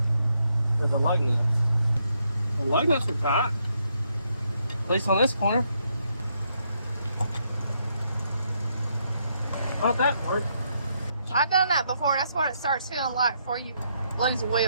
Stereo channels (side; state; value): both; inverted; correlation -0.76